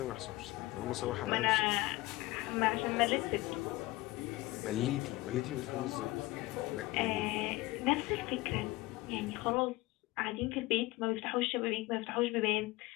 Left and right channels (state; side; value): quieter; right; 20.0 dB